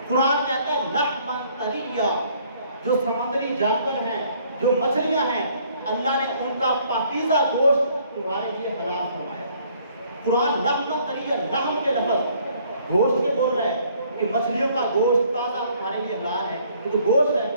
قرآن کہتا ہے لحما طریا، جو سمندری جانور ہیں، جو مچھلیاں ہیں، اللہ نے ان کا پاکیزہ گوشت تمہارے لیے حلال فرمایا۔ قرآن لحما طریا، لحم کے لفظ گوشت کے بول رہا ہے کہ مچھلیوں کا گوشت تازہ تمہارے لیے حلال ہے، یہ تو گوشت ہے۔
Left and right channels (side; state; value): both; inverted; correlation -0.62